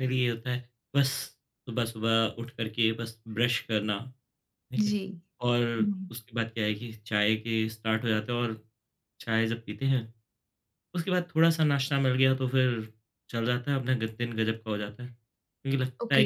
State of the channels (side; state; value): both; identical; correlation 1.00